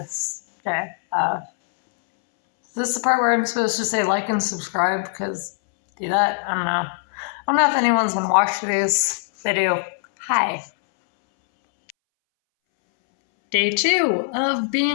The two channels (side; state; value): right; silent; 63 dB below the other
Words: day. This is the part where I'm supposed to say like and subscribe, because do that? I don't know. I don't know if anyone's gonna watch these. If they do, hi. Day 2 of